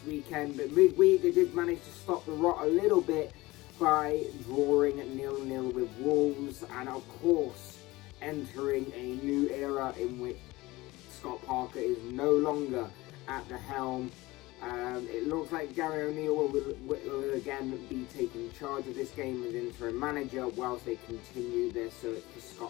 weekend. But midweek, they did manage to stop the rot a little bit by drawing 0-0 with Wolves, and of course, entering a new era in which Scott Parker is no longer at the helm. It looks like Gary O'Neill will again be taking charge of this game as interim manager whilst they continue their search for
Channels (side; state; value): right; quieter; 20.2 dB